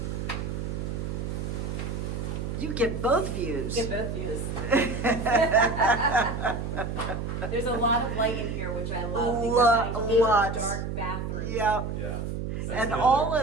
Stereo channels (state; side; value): noise; right; hum, 4 dB below the sound